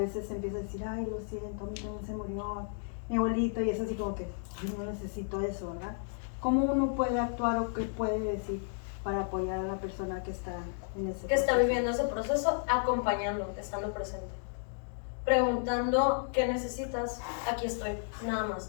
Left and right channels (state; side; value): silent; right; digital silence